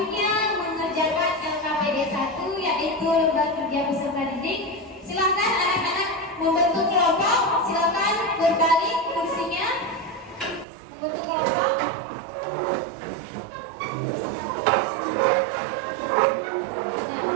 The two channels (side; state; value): left; drops out; at 10.7 s